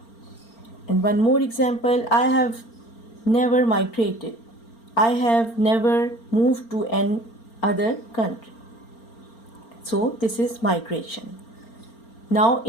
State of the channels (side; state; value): right; late; 4.4 ms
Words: And one more example, I have never migrated. I have never moved to an other country. So this is migration. Now